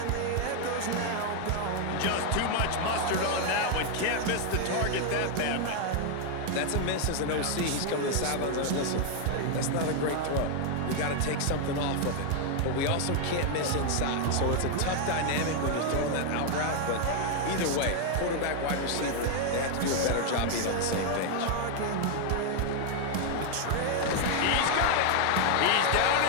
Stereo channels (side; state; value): both; different; correlation 0.00